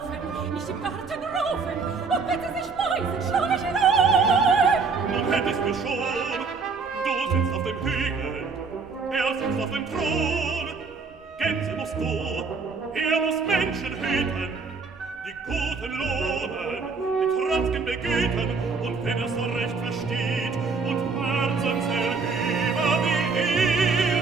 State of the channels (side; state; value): left; quieter; 4.7 dB